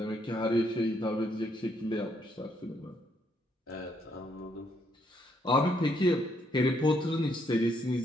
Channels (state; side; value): normal; both; correlation 0.73